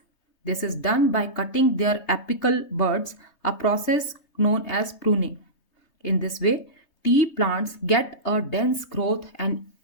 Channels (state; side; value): late; right; 3.2 ms